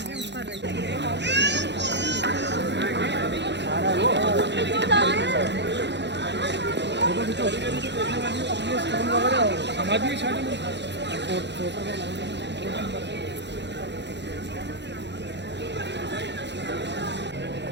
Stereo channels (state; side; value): late; left; 0.51 ms